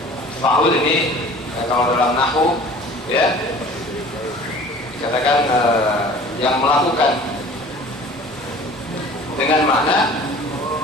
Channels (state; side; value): normal; both; correlation 0.45